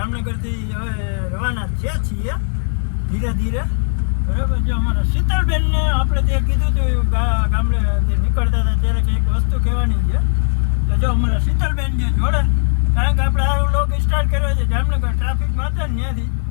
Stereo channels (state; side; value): silent; right; 61 dB below the other